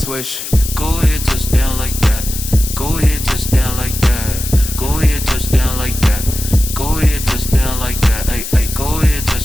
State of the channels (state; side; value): noise; left; hiss, 7 dB below the sound